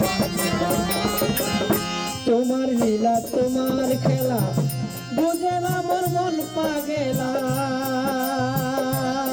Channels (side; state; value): both; identical; correlation 1.00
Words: তোমার লীলা তোমার খেলা বুঝে না মোর মন পাগেলা,